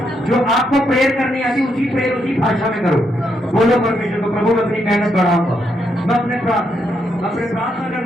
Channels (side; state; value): both; normal; correlation 0.78